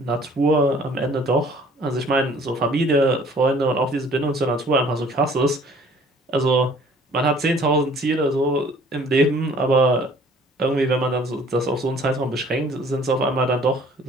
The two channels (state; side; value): normal; both; correlation 0.54